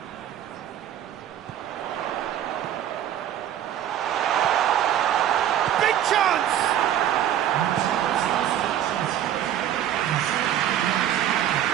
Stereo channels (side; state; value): left; quieter; 10.9 dB